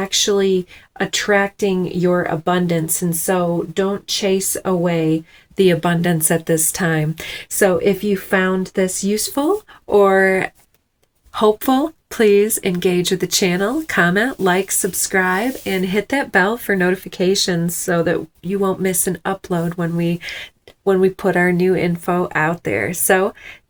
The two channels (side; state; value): both; identical; correlation 1.00